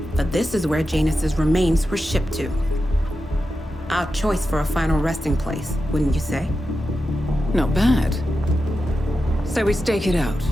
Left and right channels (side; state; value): both; normal; correlation 0.90